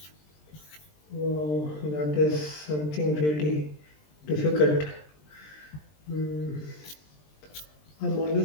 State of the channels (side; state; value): right; late; 20 ms